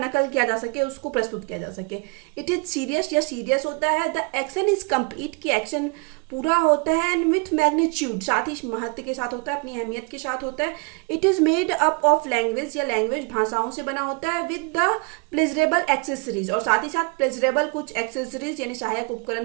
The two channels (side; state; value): left; quieter; 32.8 dB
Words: किया जा सके, उसको प्रस्तुत किया जा सके। इट इज सीरियस, या सीरियस होता है। द एक्शन इज कंप्लीट, की एक्शन पूरा होता है, एंड विथ मैग्नीट्यूड, साथ ही महत्व के साथ होता है, अपनी अहमियत के साथ होता है। It is made up of language, या लैंग्वेज भाषाओं से बना होता है, विद द प्लेजरेबल एक्सेसरीज, और साथ ही साथ प्लेजरेबल कुछ एक्सेसरीज यानी सहायक